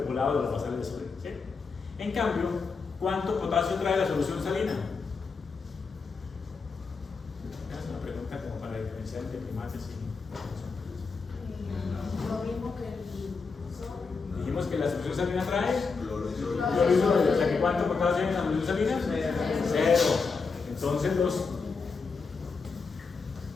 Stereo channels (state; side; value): quieter; right; 4.8 dB